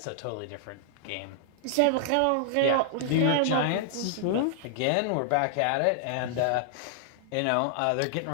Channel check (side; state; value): both; different; correlation -0.01